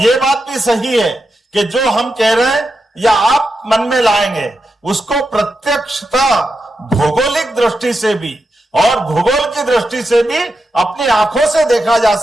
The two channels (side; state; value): both; normal; correlation 0.87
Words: बात भी सही है कि जो हम कह रहे हैं या आप मन में लाएंगे, उसको प्रत्यक्षता भौगोलिक दृष्टि से भी और भूगोल की दृष्टि से भी अपनी आंखों से देखा जा